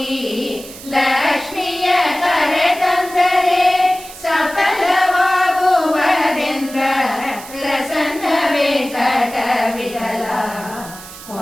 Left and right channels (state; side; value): noise; right; hiss, 16 dB below the sound